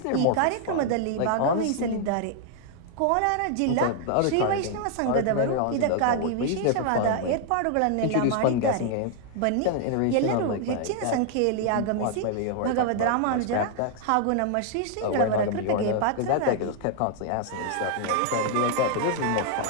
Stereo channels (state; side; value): different; both; correlation 0.00